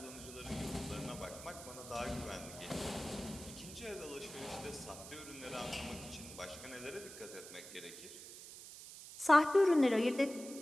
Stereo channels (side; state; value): right; noise; hiss, 13 dB below the sound